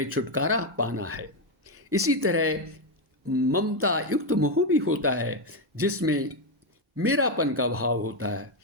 छुटकारा पाना है। इसी तरह ममता युक्त मोह भी होता है, जिसमें मेरापन का भाव होता है।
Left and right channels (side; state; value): both; normal; correlation 0.06